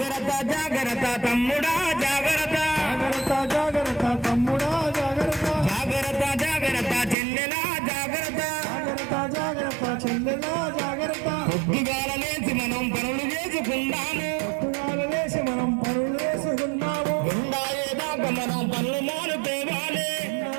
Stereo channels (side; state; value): left; drops out; at 7.2 s